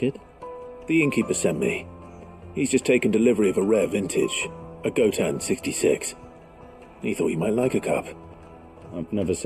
it? The innkeeper sent me. He's just taken delivery of a rare vintage, a Gotan 66. He thought you might like a cup. I've never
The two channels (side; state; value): both; identical; correlation 1.00